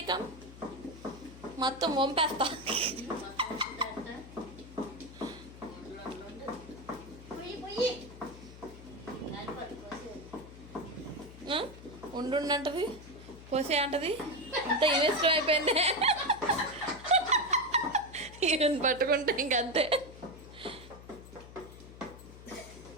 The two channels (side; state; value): left; noise; hum, 16 dB below the sound